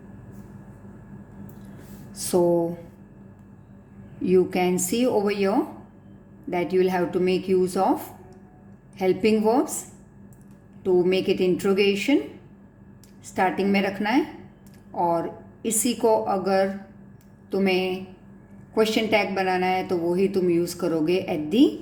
So you can see over here that you will have to make use of helping verbs to make it interrogation starting में रखना है, और इसी को अगर तुम्हें question tag बनाना है तो वो ही तुम यूज़ करोगे at the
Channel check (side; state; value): both; identical; correlation 1.00